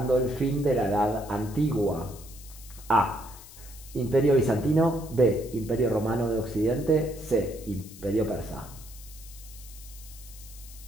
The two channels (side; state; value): left; noise; hiss, 18 dB below the sound